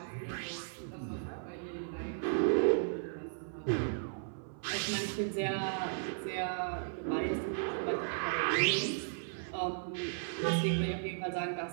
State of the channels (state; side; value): silent; left; 54 dB below the other